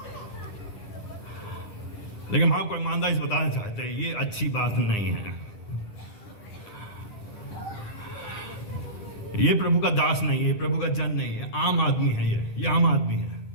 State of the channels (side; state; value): right; late; 9.8 ms